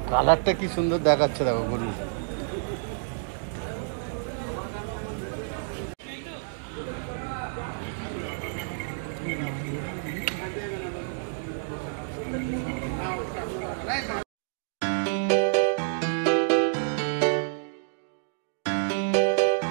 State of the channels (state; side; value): silent; left; digital silence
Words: কালারটা কি সুন্দর দেখাচ্ছে, দেখো গরু।